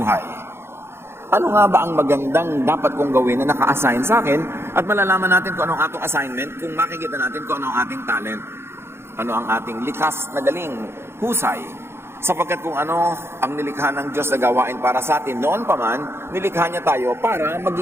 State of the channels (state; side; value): late; left; 0.12 ms